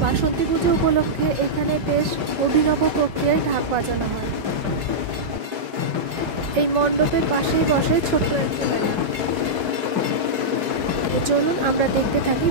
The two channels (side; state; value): left; late; 5.0 ms